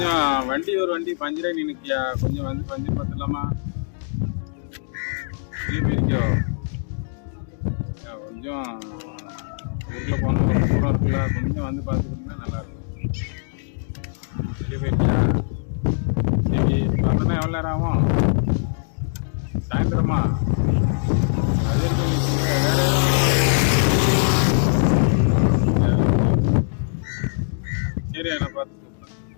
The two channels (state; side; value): silent; right; digital silence